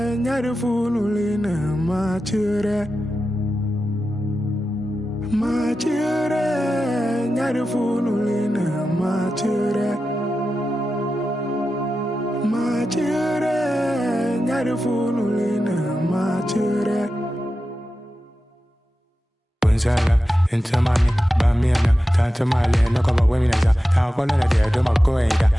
nyarfunulina, machere. Machere, nyarfunulina, machere. Machere, nyarfunulina, machere. Into money, Bamiana, Tanta Mali, no cover women as a Tacola, do my goida,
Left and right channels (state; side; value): normal; both; correlation 0.92